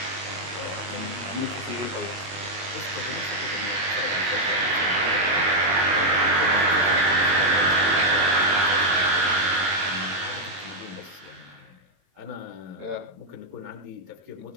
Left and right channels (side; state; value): left; late; 22 ms